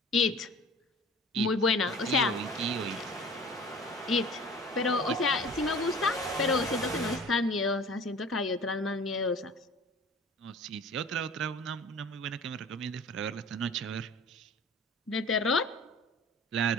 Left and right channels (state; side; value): normal; both; correlation 0.43